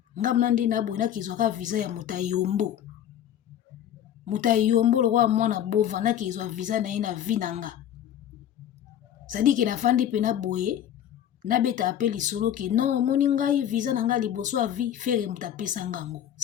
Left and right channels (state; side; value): quieter; right; 10.5 dB